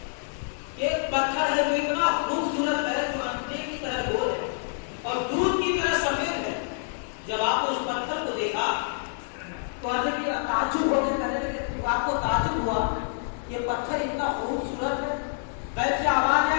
ایک پتھر ہے جو اتنا خوبصورت ہے جو انڈے کی طرح گول ہے اور دودھ کی طرح سفید ہے. جب آپ نے اس پتھر کو دیکھا تو حضرت تعجب ہو کے کہنے لگے، آپ کو تعجب ہوا یہ پتھر اتنا خوبصورت ہے، کیسے آواز ہے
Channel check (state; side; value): silent; right; digital silence